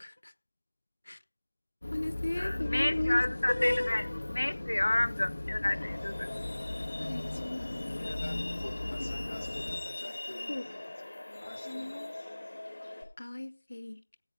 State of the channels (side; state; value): both; inverted; correlation -1.00